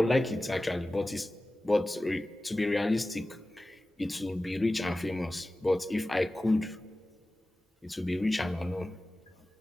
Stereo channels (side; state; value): both; normal; correlation 0.96